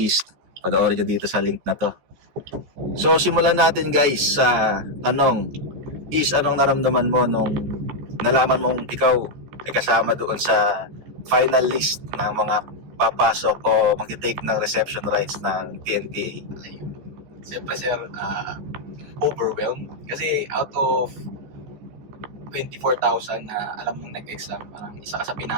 panoorin nyo dito sa link na to. So, simulan natin guys sa tanong. East, anong naramdaman mo nung nalaman mong ikaw ay kasama doon sa final list ng mga papasok o mag-take ng reception rights ng PNPA? Ayun. Siyempre sir, overwhelmed. Kasi out of 24,000 na alam mong nag-exam, parang isa ka sa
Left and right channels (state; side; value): late; left; 14 ms